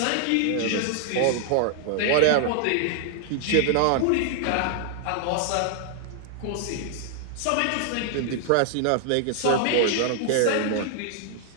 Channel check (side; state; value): both; different; correlation 0.00